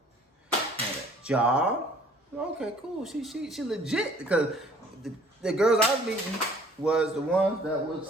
had a job. Okay, cool. She legit, because the girls I was meeting was the ones that was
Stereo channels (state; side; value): normal; both; correlation 0.55